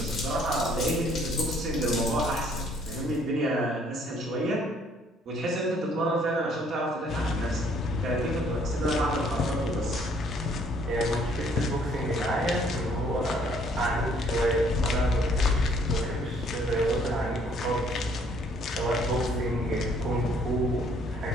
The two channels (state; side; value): normal; both; correlation 0.63